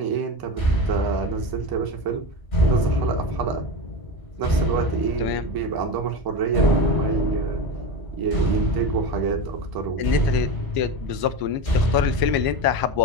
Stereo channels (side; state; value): left; late; 1.0 ms